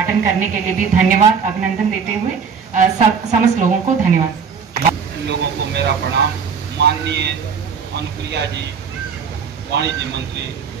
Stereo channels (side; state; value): left; quieter; 6.3 dB